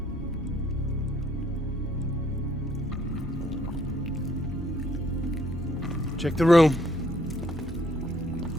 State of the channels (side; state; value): both; normal; correlation 0.66